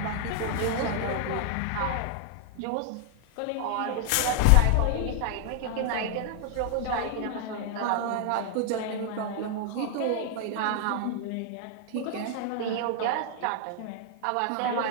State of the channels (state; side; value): different; both; correlation 0.00